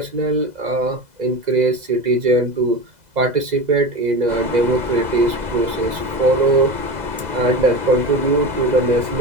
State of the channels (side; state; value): left; late; 2.0 ms